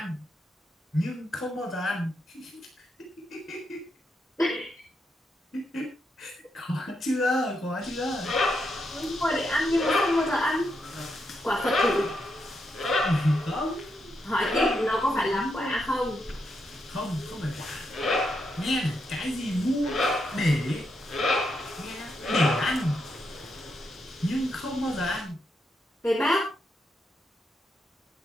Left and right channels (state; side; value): normal; both; correlation 0.82